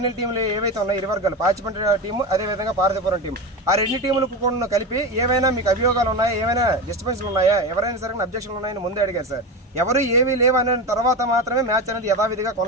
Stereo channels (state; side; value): normal; both; correlation 0.22